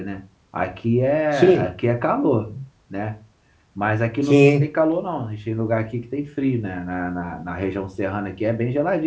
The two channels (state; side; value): identical; both; correlation 1.00